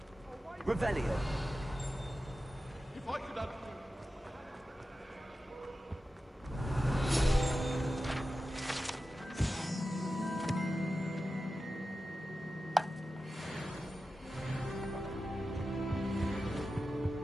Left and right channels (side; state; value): both; normal; correlation 0.93